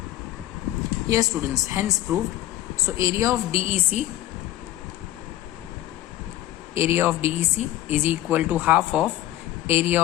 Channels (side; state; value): right; quieter; 14.5 dB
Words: Yes students, hence proved. So area of DEC is equal to half of area